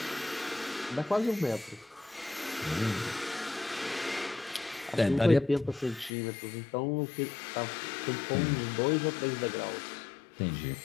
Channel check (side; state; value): right; drops out; at 6.1 s